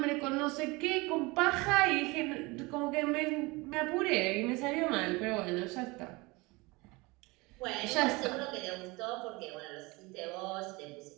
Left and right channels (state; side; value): quieter; left; 24.4 dB